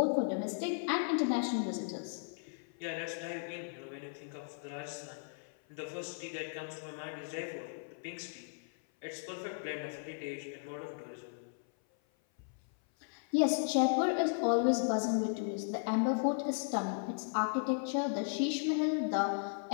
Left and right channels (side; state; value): right; silent; 54 dB below the other